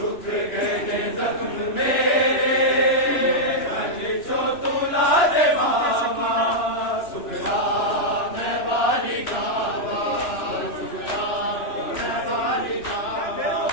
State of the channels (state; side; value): late; right; 2.9 ms